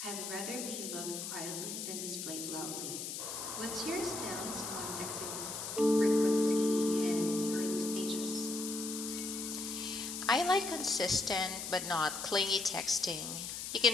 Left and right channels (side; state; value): left; noise; hiss, 6 dB below the sound